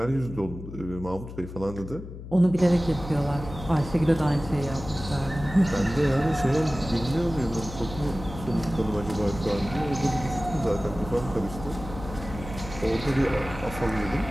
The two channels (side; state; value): left; noise; hum, 12 dB below the sound